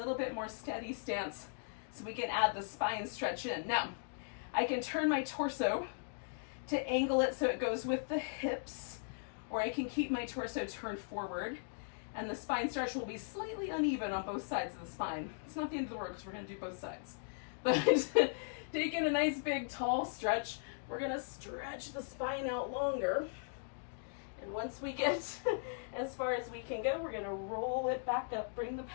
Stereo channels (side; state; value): right; silent; digital silence